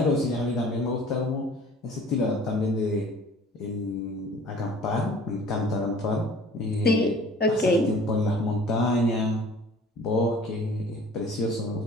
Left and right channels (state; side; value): normal; both; correlation 0.49